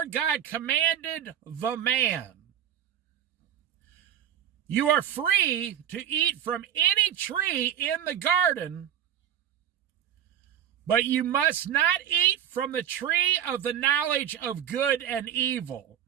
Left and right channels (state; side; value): quieter; left; 10.0 dB